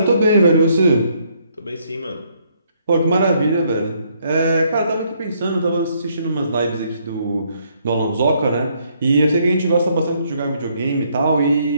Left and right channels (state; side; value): inverted; both; correlation -0.70